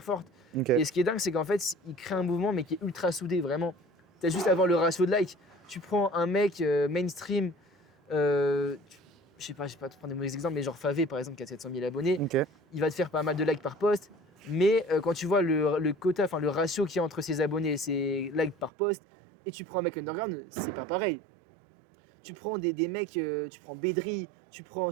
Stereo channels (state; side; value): drops out; left; at 18.7 s